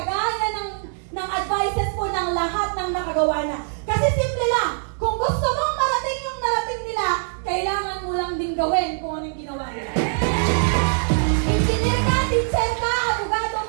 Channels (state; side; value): silent; left; 56 dB below the other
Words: ng advices po ng lahat ng nakagawa na. Kasi simple lang, kung gusto mong marating yung narating nila, kailangan mo lang din gawin kung ano yung ginawa nila. Engineer ka, teacher ka, abogado